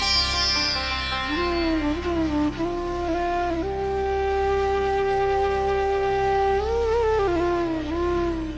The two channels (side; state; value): left; noise; rumble, 21 dB below the sound